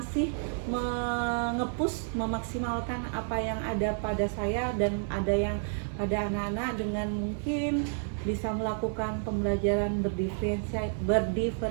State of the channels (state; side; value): silent; left; digital silence